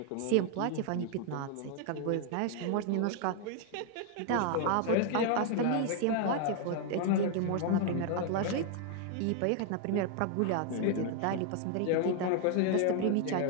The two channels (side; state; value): both; different; correlation 0.00